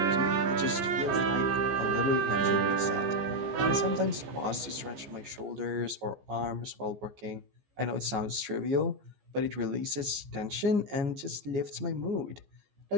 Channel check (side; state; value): left; late; 15 ms